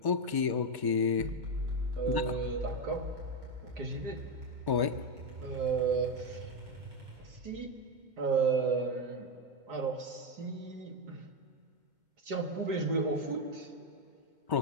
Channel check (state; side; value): late; left; 2.2 ms